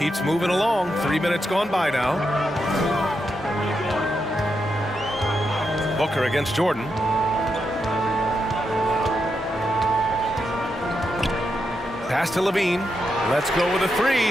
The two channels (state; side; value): normal; both; correlation 0.84